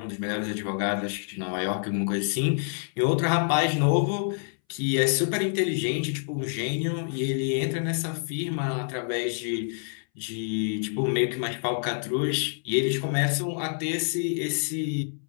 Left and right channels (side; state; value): right; silent; 60 dB below the other